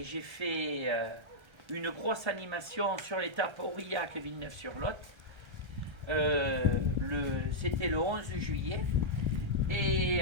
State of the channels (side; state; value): left; late; 1.3 ms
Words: j'ai fait une grosse animation sur l'étape Aurillac-Villeneuve-sur-Lot. C'était le 11 juillet. Et